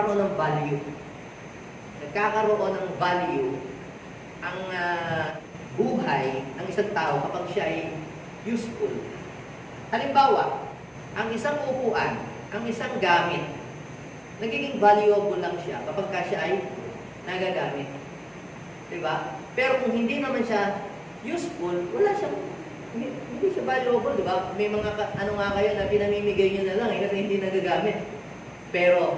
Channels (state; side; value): identical; both; correlation 1.00